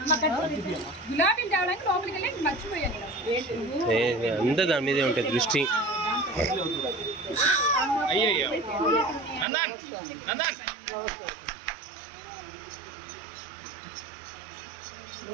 గులాబీలు తేవడానికి లోపలికి వెళ్ళి మర్చిపోయాను. అంతా దాని మీదే ఉంటుంది దృష్టి. అయ్యయ్యో నందన్ నందన్.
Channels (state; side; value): drops out; left; at 9.5 s